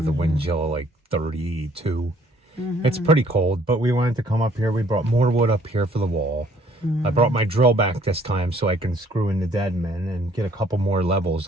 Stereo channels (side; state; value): both; normal; correlation 0.61